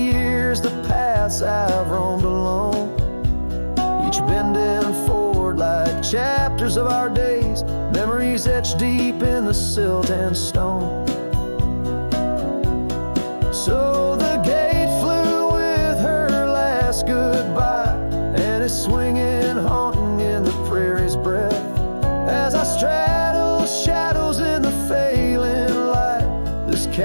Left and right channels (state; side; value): inverted; both; correlation -1.00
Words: the paths I've roamed alone, each bending forward like chapters of our days, memories etched deep in the silt and stone. So the gate flew with her last goodbye, and it's swinging, haunting in the prairie's breath, as I straddle shadows in the failing light. This